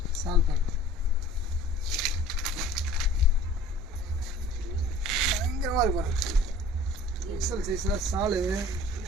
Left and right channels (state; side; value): normal; both; correlation 0.48